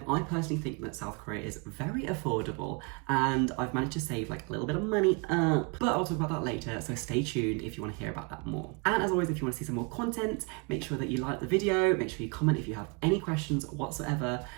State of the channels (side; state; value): left; quieter; 31.4 dB